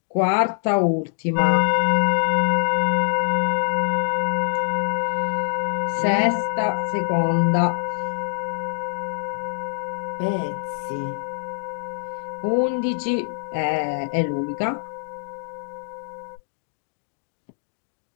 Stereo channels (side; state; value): right; silent; 60 dB below the other